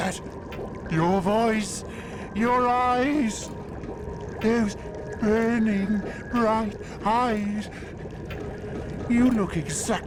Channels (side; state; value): both; identical; correlation 1.00